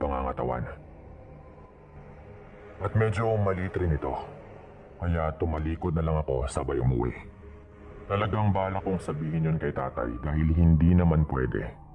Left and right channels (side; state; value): both; identical; correlation 1.00